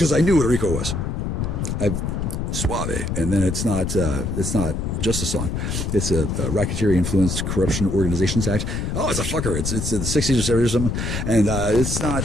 I knew what Rico was. Suave. And then it's not just a song. It's a Racketeering Influenced Corruption Organizations Act. Oh, it's a fucker. It's in the 60s or 70s or something. And it's not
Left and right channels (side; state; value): left; noise; rumble, 2 dB below the sound